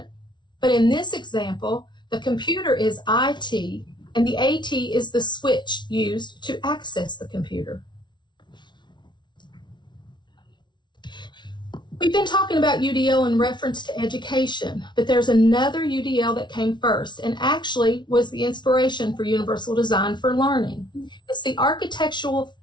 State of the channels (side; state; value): right; late; 0.22 ms